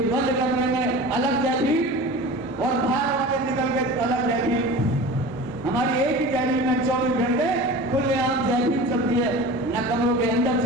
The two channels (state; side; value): normal; both; correlation 0.35